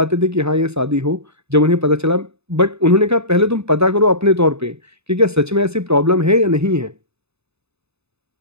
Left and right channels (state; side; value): late; left; 0.80 ms